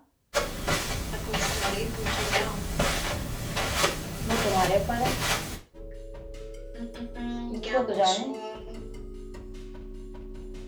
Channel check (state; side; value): identical; both; correlation 1.00